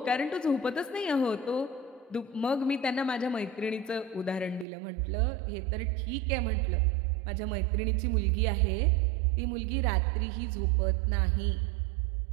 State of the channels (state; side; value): drops out; left; at 4.7 s